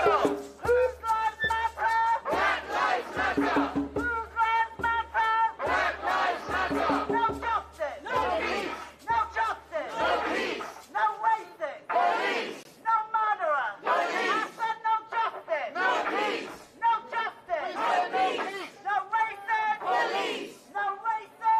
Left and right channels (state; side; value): identical; both; correlation 1.00